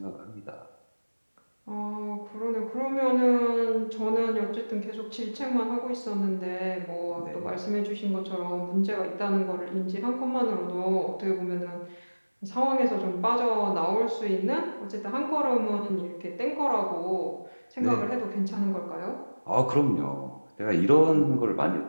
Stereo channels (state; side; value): inverted; both; correlation -1.00